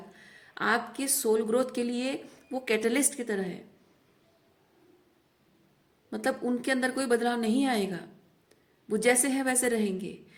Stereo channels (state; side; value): identical; both; correlation 1.00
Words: आपकी सोल ग्रोथ के लिए वो कैटलिस्ट की तरह है। मतलब उनके अंदर कोई बदलाव नहीं आएगा, वो जैसे हैं वैसे रहेंगे।